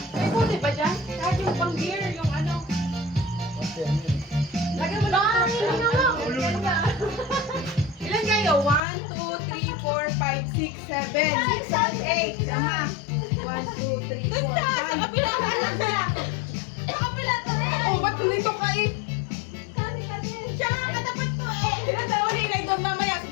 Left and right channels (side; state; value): right; drops out; at 8.8 s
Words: May boat ba dyan? Kahit yung pang beer, yung ano. Lagyan mo lang. Ilan kayo? 1, 2, 3, 4, 5, 6, 7, 8. Tama. 1, 2, 3, 4, 5. Sa kapila ka lang siya. Sa kapila to eh. Oh, ba't dito ka eh? Siya nga katapat ko eh. Ilan taon eh? Inaidong mamaya sa